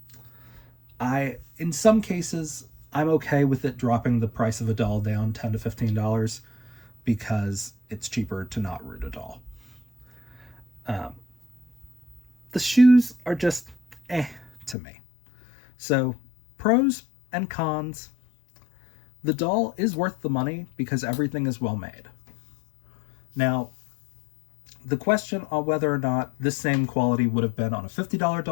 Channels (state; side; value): drops out; right; at 14.8 s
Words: In some cases, I'm okay with it dropping the price of a doll down $10 to $15 because it's cheaper to not root a doll. The shoes are just to me. So, pros and cons. The doll is worth the money because everything is well made. Now, the question on whether or not this same quality would have been on a $50